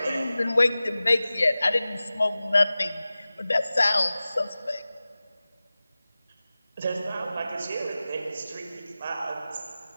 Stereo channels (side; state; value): both; inverted; correlation -0.97